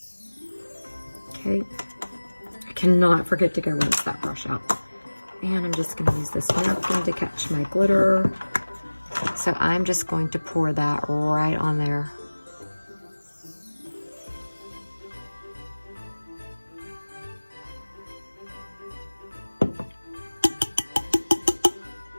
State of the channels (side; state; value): both; inverted; correlation -1.00